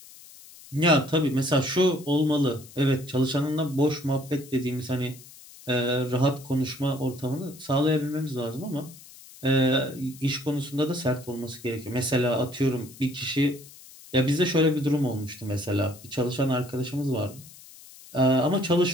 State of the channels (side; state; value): left; noise; hiss, 20 dB below the sound